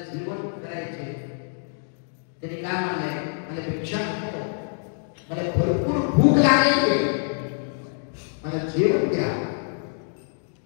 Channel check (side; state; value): right; silent; digital silence